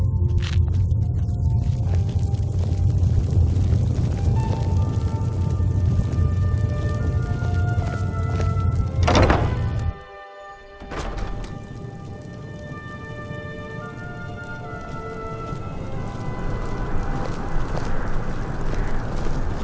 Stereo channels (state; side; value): identical; both; correlation 1.00